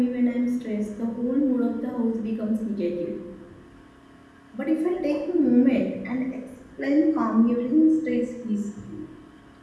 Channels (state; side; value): identical; both; correlation 1.00